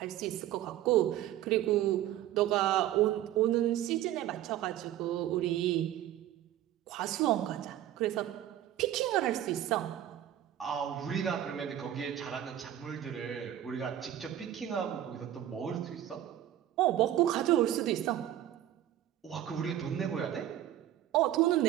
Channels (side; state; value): left; quieter; 12.3 dB